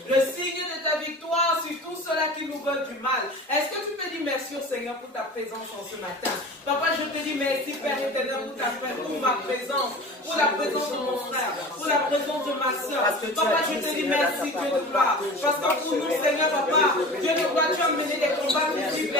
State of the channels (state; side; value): normal; both; correlation 0.36